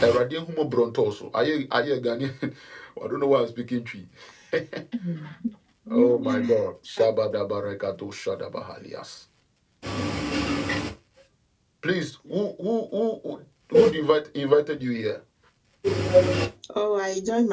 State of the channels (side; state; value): both; identical; correlation 1.00